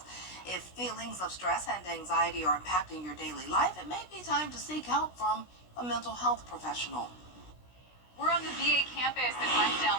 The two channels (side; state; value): right; late; 16 ms